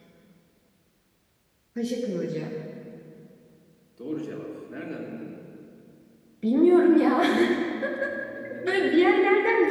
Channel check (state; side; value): identical; both; correlation 1.00